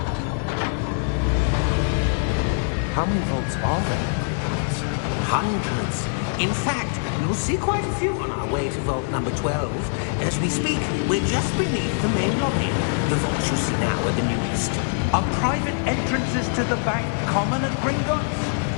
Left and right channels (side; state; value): right; silent; digital silence